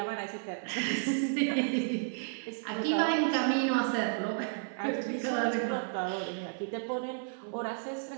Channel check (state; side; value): silent; left; 56 dB below the other